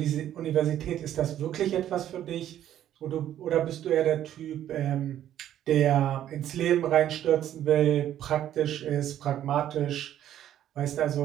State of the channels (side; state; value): left; quieter; 11.5 dB